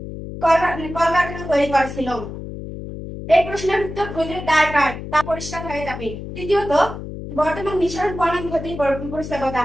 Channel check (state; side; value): noise; left; hum, 9 dB below the sound